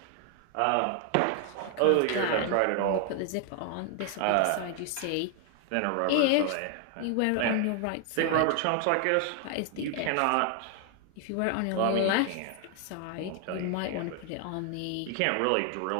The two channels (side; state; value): both; different; correlation 0.00